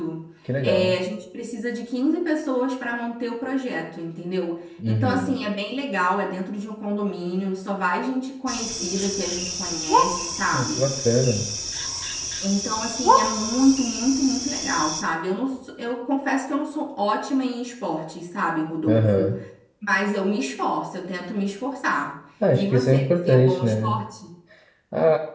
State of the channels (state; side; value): identical; both; correlation 1.00